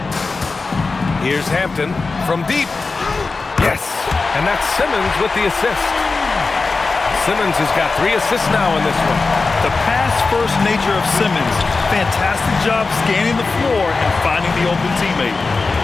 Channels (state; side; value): quieter; right; 4.0 dB